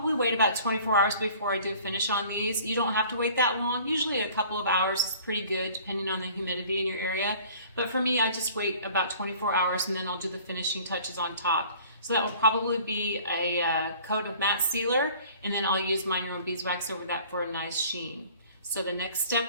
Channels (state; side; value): inverted; both; correlation -0.50